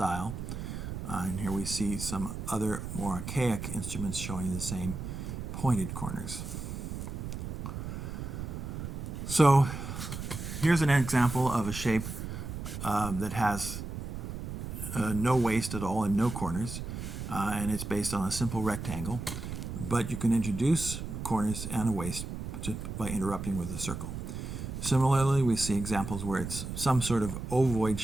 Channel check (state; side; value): noise; right; rumble, 6 dB below the sound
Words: And here we see some other more archaic instruments showing the same pointed corners. So here's an example of a shape that has no waist at all and no corners, and it's based on a simple rectangle. But you can introduce corners and a waist just by interrupting with a circle. Similarly, we see examples where it's some sort of ovoid